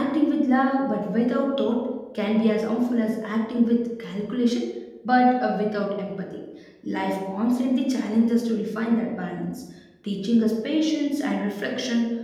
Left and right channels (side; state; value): both; identical; correlation 1.00